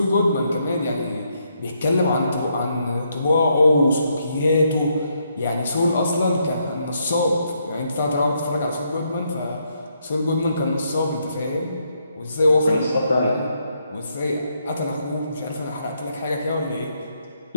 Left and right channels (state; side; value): inverted; both; correlation -0.76